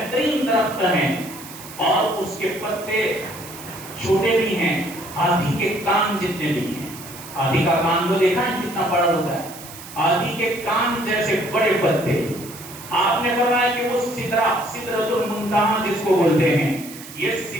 درخت ہے اور اس کے پتے چھوٹے بھی ہیں، ہاتھی کے کان جتنے بھی ہیں. ہاتھی کا کان تو دیکھا ہے کتنا بڑا ہوتا ہے، ہاتھی کے کان جیسے بڑے پتے. آپ نے فرمایا کہ وہ سدرۃ المنتہا جس کو بولتے ہیں، یہ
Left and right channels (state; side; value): noise; right; hiss, 15 dB below the sound